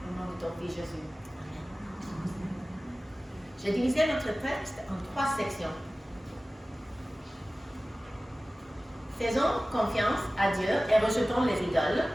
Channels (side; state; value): both; normal; correlation 0.97